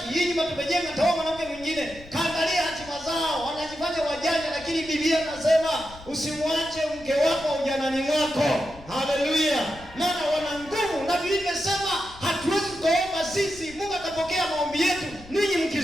hii nyumba tumejenga taoa mwanamke mwingine. Kaangalia hatima zao wanajifanya wajanja lakini Biblia inasema usimwache mke wako ujanani mwako. Haleluya. Maana wana nguvu na Biblia inasema hatuwezi kuomba sisi Mungu atapokea maombi yetu ninyi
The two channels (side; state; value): left; noise; rumble, 20 dB below the sound